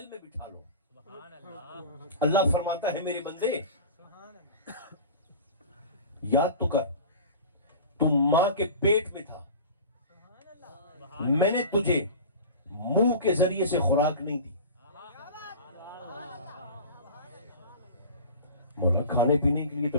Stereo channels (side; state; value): both; inverted; correlation -0.36